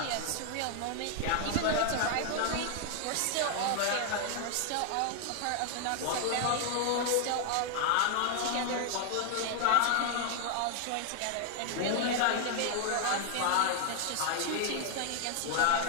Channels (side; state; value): both; different; correlation 0.00